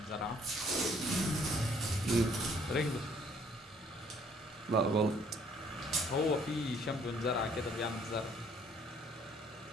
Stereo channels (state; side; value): normal; both; correlation 0.61